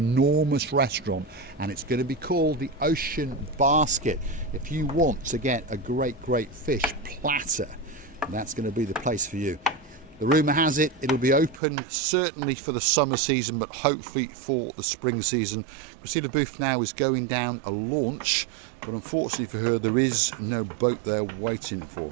restaurant, and it's going to be called the Ocean Basket. If you want to get a great fish platter, that's going to be the place for you. The rumour has it, it'll be open certainly for the summer season, but hopefully for the spring season. Christina Booth now is going down a launch, but unfortunately for her, there is no boat there waiting for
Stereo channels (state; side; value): drops out; left; at 11.6 s